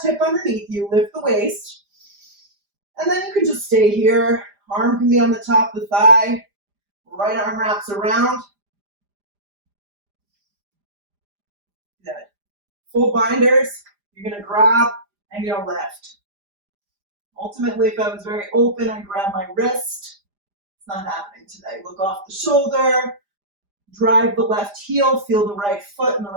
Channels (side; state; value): left; late; 5.0 ms